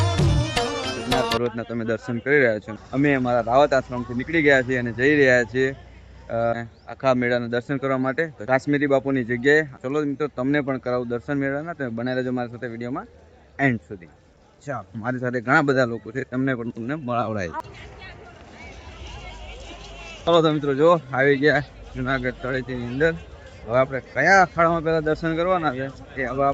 પર્વતના તમે દર્શન કરી રહ્યા છો. અમે અમારા રાવત આશ્રમથી નીકળી ગયા છીએ અને જઈ રહ્યા છીએ આખા મેળાના દર્શન કરવા માટે. તો કાશ્મીરી બાપુની જગ્યાએ ચલો મિત્રો તમને પણ કરાવું દર્શન મેળાના. તમે બનાવી રહેજો મારી સાથે વિડીયોમાં એન્ડ સુધી. ચાલો, મારી સાથે ઘણા બધા લોકો છે, તમને મળાવડાય. ચલો તો મિત્રો જો આવી ગયા જુનાગઢ તળેટીની અંદર. હવે આપણે કયા અખાડામાં પહેલા દર્શન કરવાના છે એ હવે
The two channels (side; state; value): both; identical; correlation 1.00